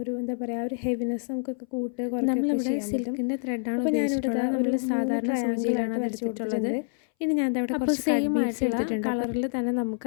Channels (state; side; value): silent; right; 60 dB below the other